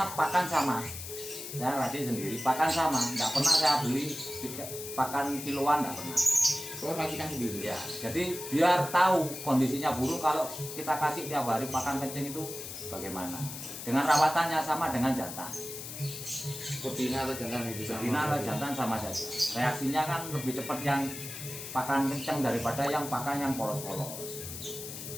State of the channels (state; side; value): noise; left; hiss, 9 dB below the sound